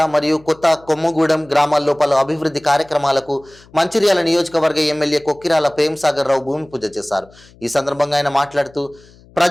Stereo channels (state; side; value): noise; left; hum, 26 dB below the sound